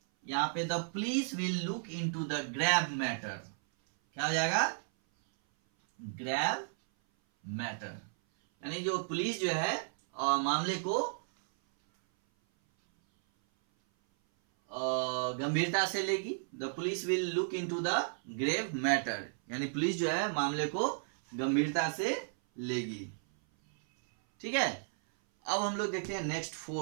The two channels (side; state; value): left; silent; 55 dB below the other